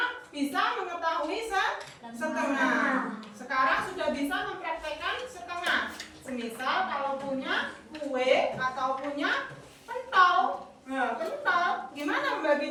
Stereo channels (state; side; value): identical; both; correlation 1.00